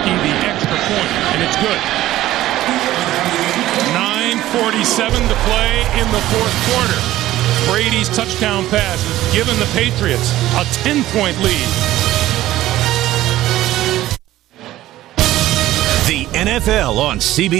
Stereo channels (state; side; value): quieter; left; 14.9 dB